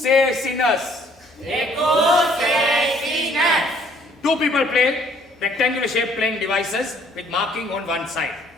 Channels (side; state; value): both; normal; correlation 0.61